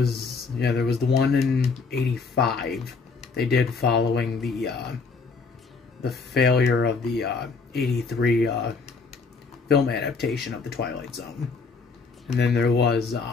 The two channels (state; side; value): quieter; right; 4.7 dB